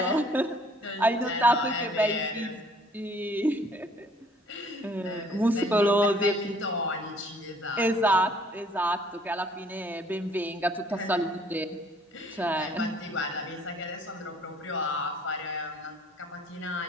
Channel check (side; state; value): both; normal; correlation 0.58